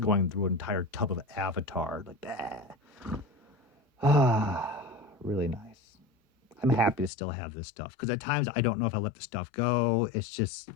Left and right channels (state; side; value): drops out; right; at 7.1 s